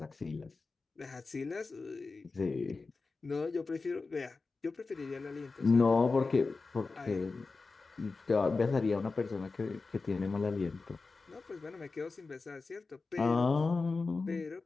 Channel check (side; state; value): right; quieter; 4.0 dB